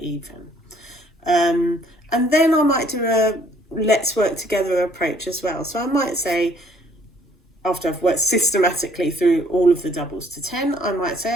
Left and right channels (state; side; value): normal; both; correlation 0.62